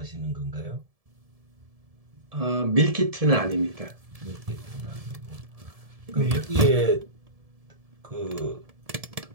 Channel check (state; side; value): late; left; 1.7 ms